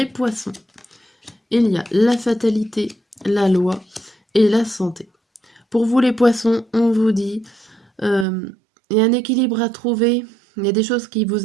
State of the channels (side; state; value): left; drops out; at 8.2 s